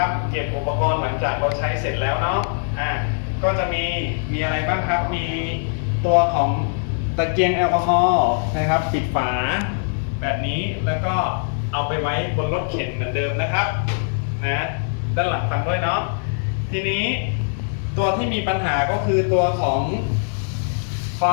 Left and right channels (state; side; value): silent; right; 64 dB below the other